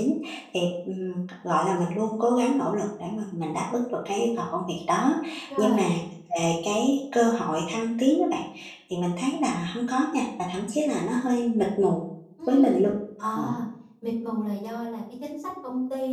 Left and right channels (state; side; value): identical; both; correlation 1.00